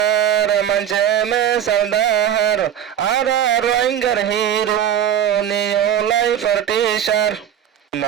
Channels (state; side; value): quieter; left; 9.8 dB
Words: মঞ্চে মে সৌদাহার আরা রোহিঙ্গার হিরো নিওলাই ফরটিশার